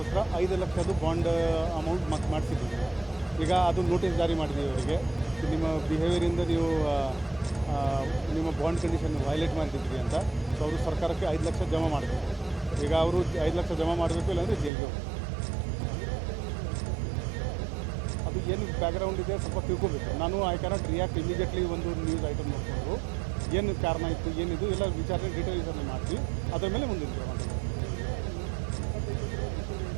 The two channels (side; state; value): left; drops out; at 14.7 s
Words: 5 ಲಕ್ಷದ್ದು ಬಾಂಡ್ ಅಮೌಂಟ್ ಮಾಡಿಸಿದ್ದೀವಿ. ಈಗ ಅದು ನೋಟಿಸ್ ಜಾರಿ ಮಾಡಿದ್ದೀವಿ ಅವರಿಗೆ. ನಿಮ್ಮ ಬಿಹೇವಿಯರಿಂದ ನೀವು ನಿಮ್ಮ ಬಾಂಡ್ ಕಂಡೀಷನ್ ವೈಲೇಟ್ ಮಾಡಿದ್ರಿ ಅಂತ. ಸೊ ಅವರು ಸರ್ಕಾರಕ್ಕೆ 5 ಲಕ್ಷ ಜಮಾ ಮಾಡಬೇಕು. ಈಗ ಅವರು 5 ಲಕ್ಷ ಜಮಾ ಮಾಡಬೇಕು, ಇಲ್ಲಾಂದರೆ ಜೈಲಿಗೆ ಹೋಗಬೇಕು. ಅದು ಏನು ಬ್ಯಾಕ್ಗ್ರೌಂಡ್ ಇದೆ ಸ್ವಲ್ಪ ತಿಳ್ಕೊಬೇಕು. ನಾನು ಐ ಕ್ಯಾನಾಟ್ ರಿಯಾಕ್ಟ್ ಇಮಿಡಿಯೇಟ್ಲಿ. ಒಂದು ನ್ಯೂಸ್ ಐಟಮ್ ನೋಡಿಕೊಂಡ್ರು ಏನು ಕಾರಣ ಇತ್ತು, ಏನಿದು ಎಲ್ಲ ವಿಚಾರಣೆ ಡೀಟೇಲ್ ವಿಚಾರಣೆ ಮಾಡ್ತೀವಿ. ಅದರ ಮೇಲೆ ಮುಂದಿನ ಕ್ರಮ ತಗೋತೀವಿ.